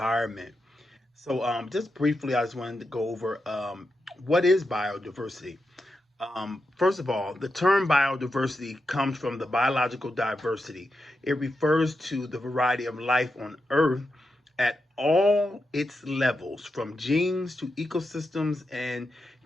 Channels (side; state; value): both; normal; correlation 0.87